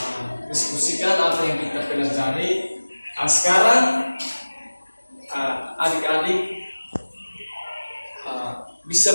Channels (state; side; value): inverted; both; correlation -1.00